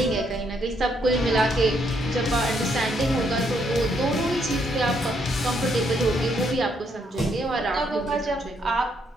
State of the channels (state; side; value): normal; both; correlation 0.73